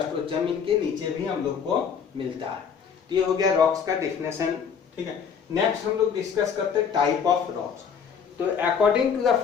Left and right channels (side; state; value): right; quieter; 6.9 dB